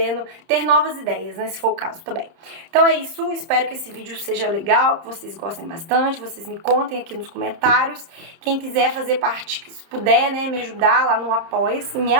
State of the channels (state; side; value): late; left; 30 ms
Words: ter novas ideias, né, se for o caso também. Então é isso, espero que esse vídeo seja legal, que vocês gostem bastante, vocês me contem aqui nos comentários. Quem quiser fazer parte, se puder, né, me ajudar lá no Apoia-se, me